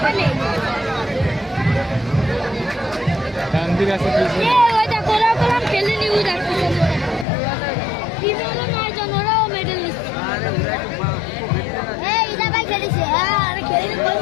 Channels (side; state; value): right; drops out; at 7.2 s